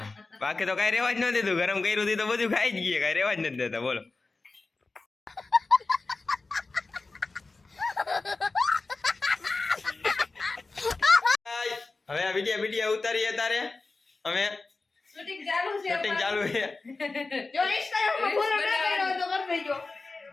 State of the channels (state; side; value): quieter; right; 3.7 dB